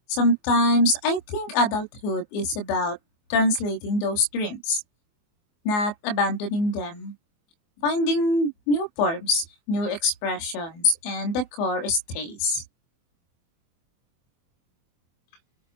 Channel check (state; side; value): late; right; 24 ms